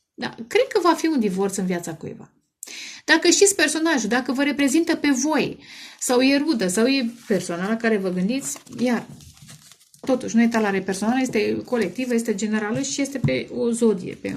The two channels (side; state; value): both; identical; correlation 1.00